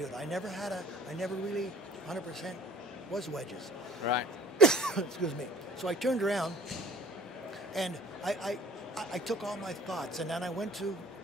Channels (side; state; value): both; normal; correlation 0.47